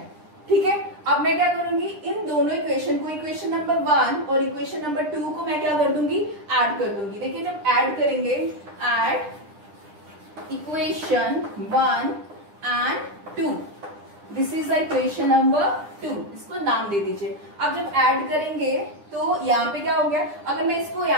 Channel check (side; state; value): left; late; 9.9 ms